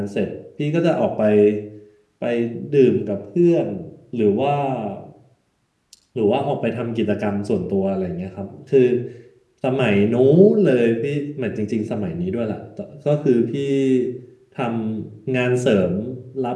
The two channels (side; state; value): both; identical; correlation 1.00